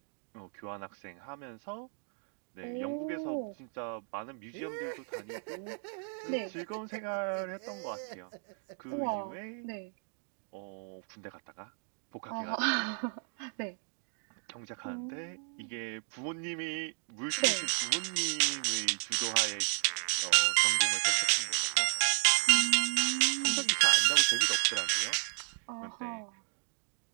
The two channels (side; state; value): left; silent; 55 dB below the other